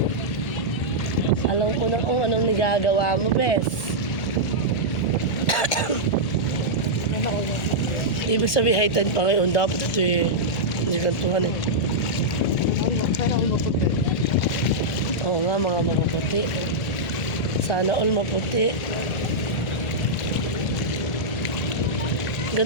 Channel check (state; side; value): late; right; 1.8 ms